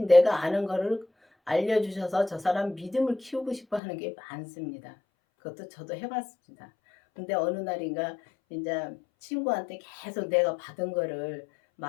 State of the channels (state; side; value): drops out; right; at 3.8 s